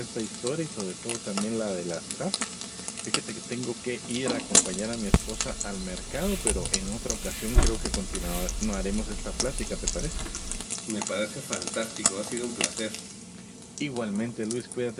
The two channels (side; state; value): both; identical; correlation 1.00